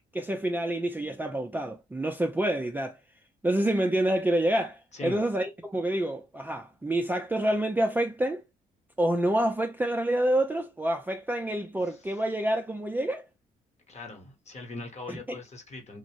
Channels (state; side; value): normal; both; correlation 0.87